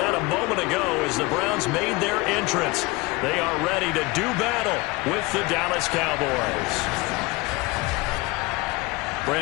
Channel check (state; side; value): quieter; right; 23.3 dB